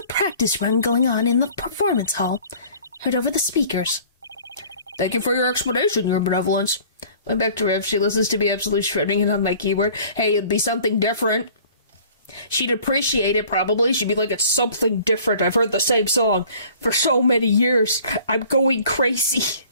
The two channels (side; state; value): both; inverted; correlation -0.50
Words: practice run going on in the performance hall, heard over the speakers. Thank you for your explanation, your benevolence. Went back to Riff. She listens to me absolutely shredding it on my keyboard. Hey, it'd be something different. She'd appreciate it, probably. She'd be like, it's something different. I've heard the same song for so many years. I'm going crazy.